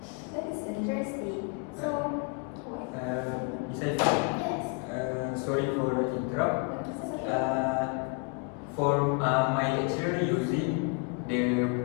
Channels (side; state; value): right; quieter; 34.8 dB